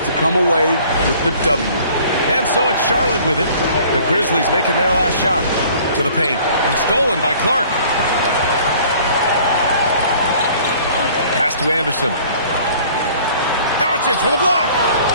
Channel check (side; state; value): both; inverted; correlation -0.53